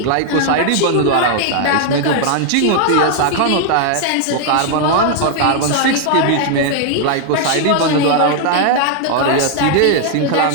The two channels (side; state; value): both; different; correlation 0.00